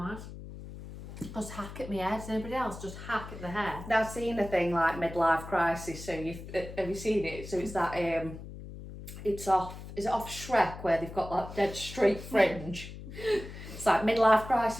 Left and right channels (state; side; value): noise; left; hum, 12 dB below the sound